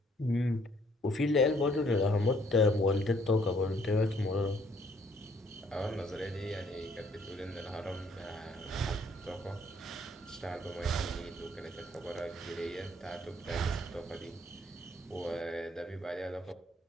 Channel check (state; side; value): normal; both; correlation 0.65